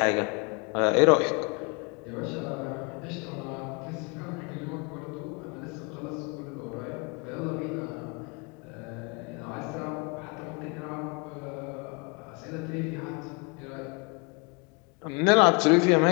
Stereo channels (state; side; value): quieter; right; 31.8 dB